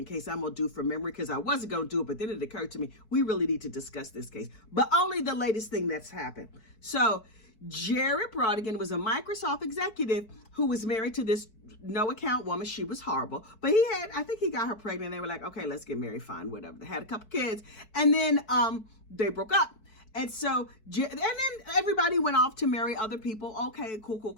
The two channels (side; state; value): right; late; 4.6 ms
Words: case I'm going to do from memory because I wasn't going to do it, but then it occurred to me, we really need to discuss this case, but only the latest thing that's happened. So Jared Bridegan was a Microsoft executive who was married to this no-account woman. She was horrible, but I think he got her pregnant. They were like, okay, let's get married, fine, whatever. They had a couple kids, and then they broke up. And so, and then everybody went off to marry other people. Okay,